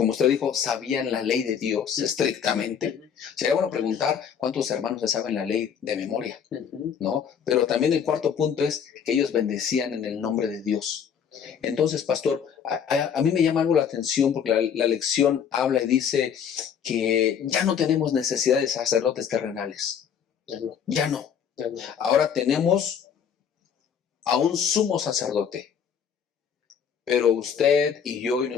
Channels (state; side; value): quieter; right; 7.7 dB